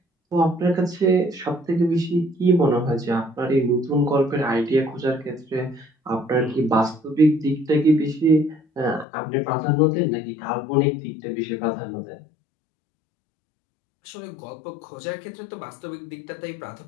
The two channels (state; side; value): drops out; right; at 9.1 s